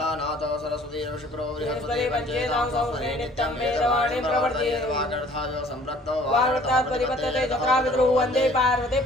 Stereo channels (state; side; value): normal; both; correlation 0.54